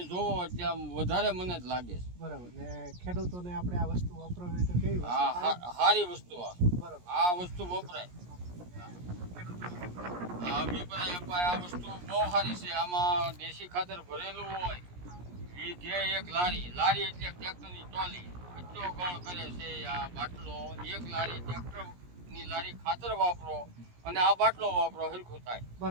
જોવો એટલે આમ વધારે મને જ લાગે છે. બરાબર. ને ખેડૂતોને આપણે આ વસ્તુ વપરાવી તો કેવી વસ્તુ? હા, સારી વસ્તુ. બરાબર. આ વસ્તુ વપરાય. આ વસ્તુ બહુ સારી છે. આમાં દેશી ખાતર ભરેલું હોય. વીઘે 1 લારી એટલે ટ્રેક્ટરની ટ્રોલી એટલો ગણ કરે છે. આ બાટલો 1 લારી, ટ્રેક્ટરની લારી ખાતર વાપરો અને આ બાટલો વાપરો, હરખું થાય.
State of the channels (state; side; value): late; left; 17 ms